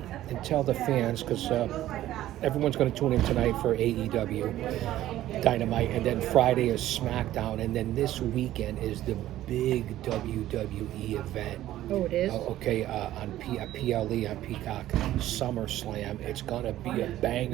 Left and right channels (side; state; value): left; quieter; 13.9 dB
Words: and tell the fans, because everyone's going to tune in tonight for AEW Dynamite, and then Friday is SmackDown, and then this weekend is the big WWE event. Oh, it is? Okay, on PLE, on Peacock, SummerSlam. It's going to be a